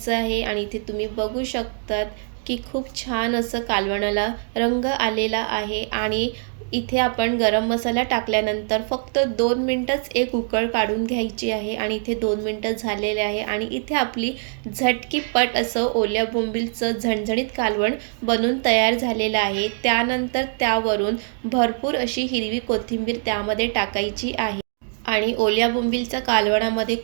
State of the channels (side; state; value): left; silent; 63 dB below the other